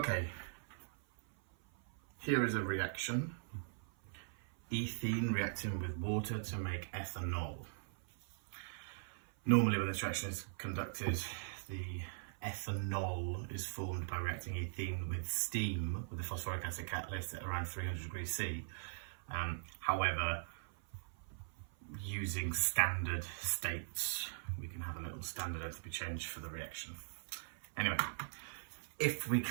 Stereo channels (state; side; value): silent; left; 51 dB below the other